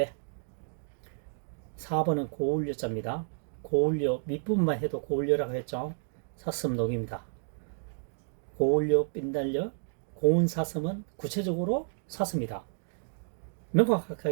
4번은 고울려자입니다. 고울려, 밑부분만 해도 고울려라고 했죠. 사슴록입니다. 고울려, 빛날려, 고운 사슴은 구체적으로 사슴이다.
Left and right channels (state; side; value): silent; left; 57 dB below the other